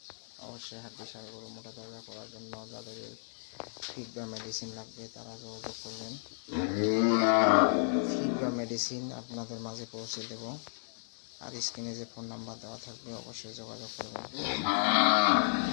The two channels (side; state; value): right; silent; digital silence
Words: অবশ্যই হাড্ডি সার গরু মোটা তাজা করার জন্য যাদের ফিড বা মেডিসিন লাগবে তারা যোগাযোগ করবেন। ফিড বা মেডিসিন আপনাদের মাঝে পৌঁছে দেব। আর স্ক্রিনে যে ফোন নাম্বার দেওয়া থাকবে অবশ্যই যোগাযোগ করবেন।